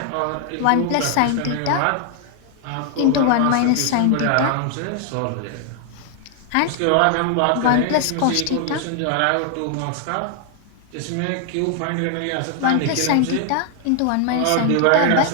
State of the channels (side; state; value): both; different; correlation 0.00